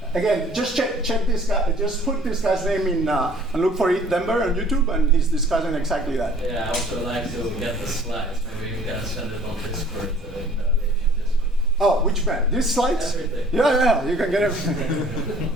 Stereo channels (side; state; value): both; normal; correlation 0.53